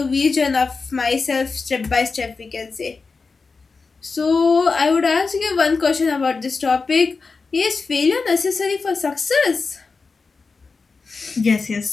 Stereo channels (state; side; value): quieter; right; 4.4 dB